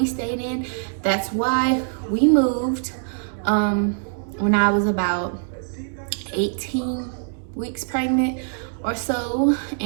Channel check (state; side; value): silent; left; 63 dB below the other